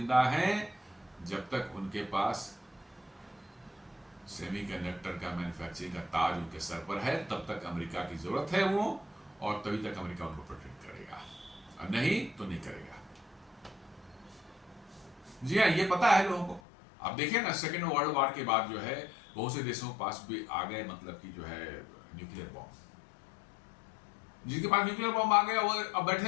हैं जब तक उनके पास सेमीकंडक्टर का मैन्युफैक्चरिंग का ताज उनके सर पर है, तब तक अमेरिका की जरूरत है वो, और तभी तक अमेरिका उनको प्रोटेक्ट करेगा, और नहीं तो नहीं करेगा। जी हाँ, ये पता है लोगों को। आप देखें ना, सेकेंड वर्ल्ड वॉर के बाद जो है बहुत से देशों के पास भी आ गए, मतलब कि जो है न्यूक्लियर बॉम्ब। जिनके पास न्यूक्लियर बॉम्ब आ गया वो अब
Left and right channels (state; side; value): drops out; right; at 16.6 s